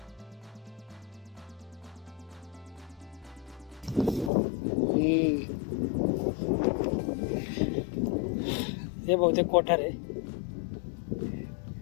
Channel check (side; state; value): right; drops out; at 4.3 s